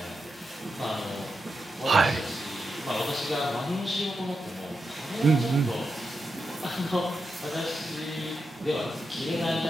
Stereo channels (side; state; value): both; normal; correlation 0.87